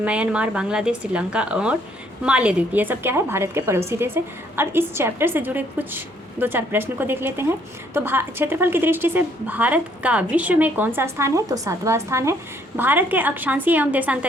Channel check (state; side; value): normal; both; correlation 0.66